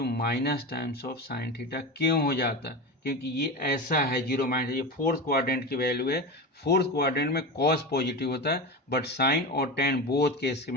minus times of sine theta. क्यों हो जाता है, क्योंकि ये ऐसा है 0 माइनस, ये फोर्थ क्वाड्रेंट की वैल्यू है, फोर्थ क्वाड्रेंट में कॉस पॉजिटिव होता है, बट साइन और टेन बोथ केस की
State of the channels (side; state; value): both; normal; correlation 0.23